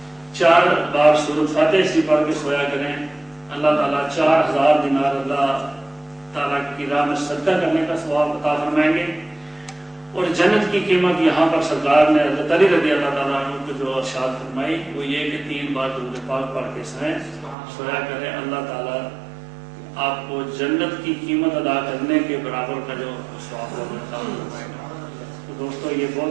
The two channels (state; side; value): drops out; left; at 17.6 s